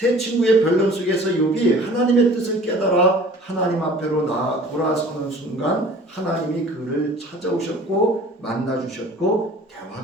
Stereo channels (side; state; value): both; normal; correlation 0.47